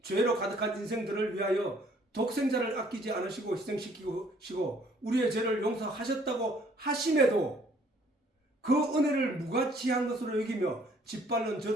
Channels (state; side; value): normal; both; correlation 0.61